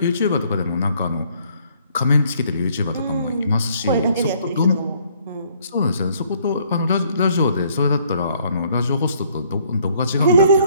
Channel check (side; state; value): both; inverted; correlation -0.64